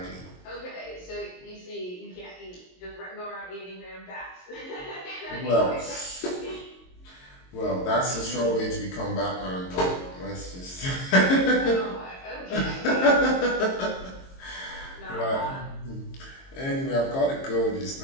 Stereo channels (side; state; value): right; late; 22 ms